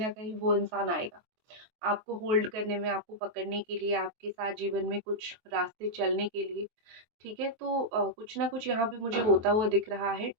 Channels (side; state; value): left; late; 23 ms